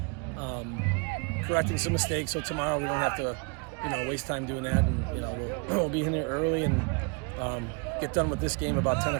correcting some mistakes. So tomorrow we don't have to, waste time doing that. And we'll be in there early and get done with this game about 10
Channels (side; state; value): left; quieter; 33.0 dB